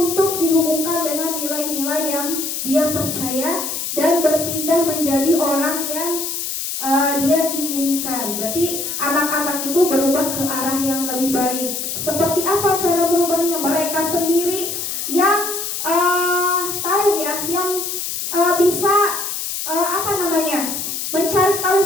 dihubungkan dengan nilai-nilai yang dia percaya dan berpindah menjadi orang yang dia inginkan. Berarti anak-anak itu berubah ke arah yang lebih baik. Seperti apa cara berubahnya? Mereka sendiri yang tahu ya, yang bisa mencari tahu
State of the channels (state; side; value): noise; left; hiss, 4 dB below the sound